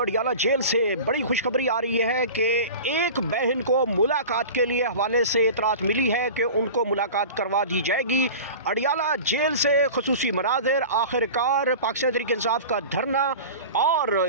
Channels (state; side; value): inverted; both; correlation -0.35